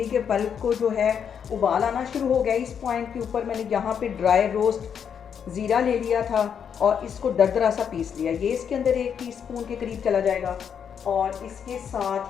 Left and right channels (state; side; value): quieter; right; 7.7 dB